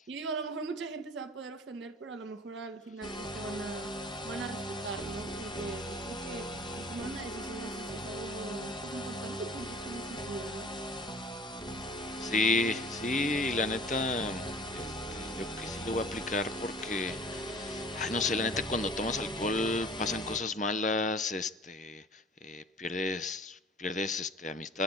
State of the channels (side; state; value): both; normal; correlation 0.47